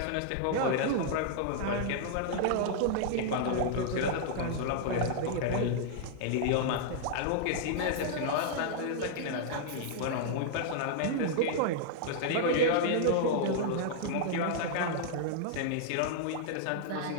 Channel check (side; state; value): both; different; correlation -0.01